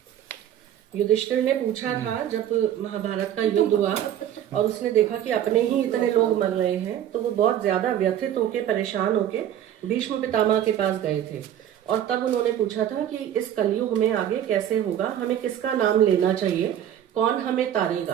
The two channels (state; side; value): quieter; left; 10.8 dB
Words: युधिष्ठिर ने पूछा था जब महाभारत का युद्ध हुआ और उसने देखा कि अपने ही इतने लोग मर रहे हैं, तो वो बहुत ज्यादा व्यथित होके, परेशान होके भीष्म पितामह के पास गए थे। और तब उन्होंने पूछा था कि इस कलयुग में आगे कैसे होगा, हमें किसका नाम लेना चाहिए, कौन हमें